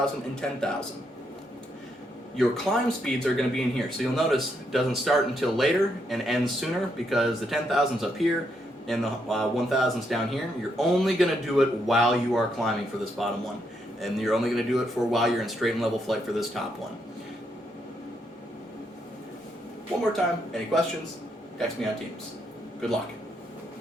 and 10,000. Your climb speeds are going to be in here. So you'll notice it doesn't start until later and ends sooner because the 10,000's up here and the 1,000's down here. You're only going to do it while you are climbing for this bottom one. And you're only going to do it for while you're in straight and level flight for this top one. One more time, any questions? Text me on Teams. Good luck.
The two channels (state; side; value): normal; both; correlation 0.77